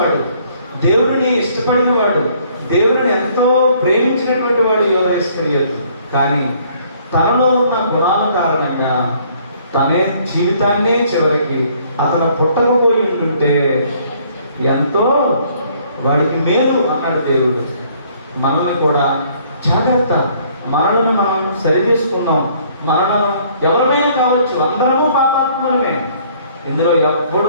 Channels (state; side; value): inverted; both; correlation -0.62